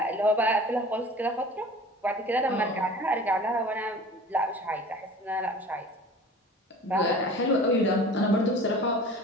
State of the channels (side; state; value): both; normal; correlation 0.42